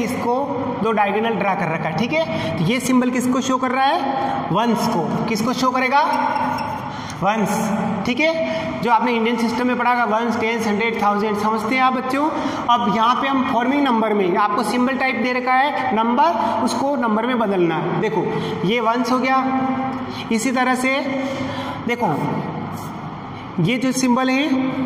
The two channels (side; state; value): both; identical; correlation 1.00